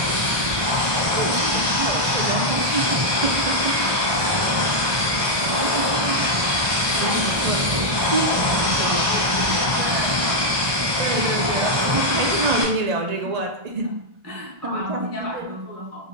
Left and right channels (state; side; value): late; left; 1.2 ms